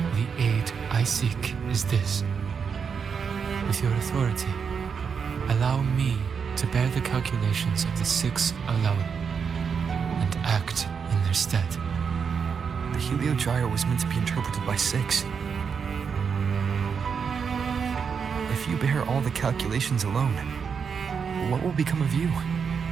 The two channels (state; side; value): quieter; left; 6.3 dB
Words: the aid I seek is this. With your authority, allow me to bear the calculations of the six alone, and act in their stead. The Heliogyre was meant to be interpreted by six. If you bear all the calculations alone, what will become of you?